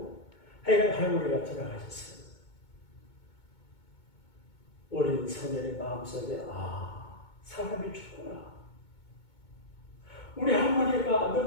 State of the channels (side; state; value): right; late; 2.2 ms